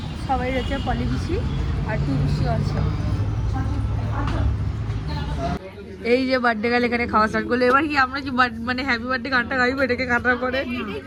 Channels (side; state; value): both; identical; correlation 1.00